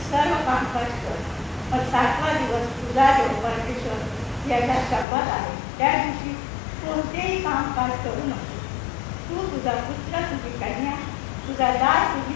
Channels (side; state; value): right; drops out; at 5.1 s